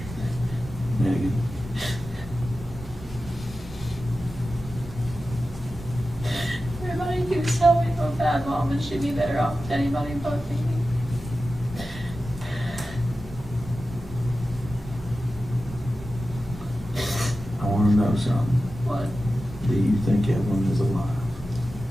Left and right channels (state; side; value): normal; both; correlation 0.93